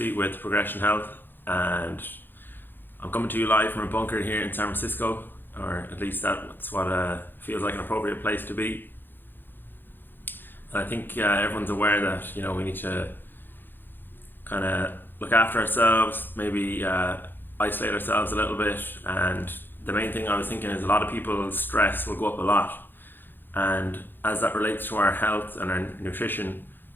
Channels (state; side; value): late; right; 0.096 ms